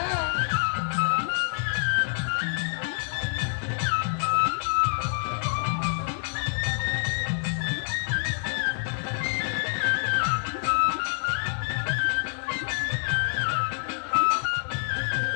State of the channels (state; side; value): silent; right; 60 dB below the other